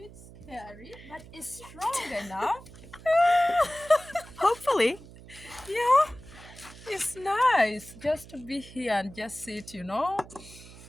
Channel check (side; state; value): right; noise; hum, 18 dB below the sound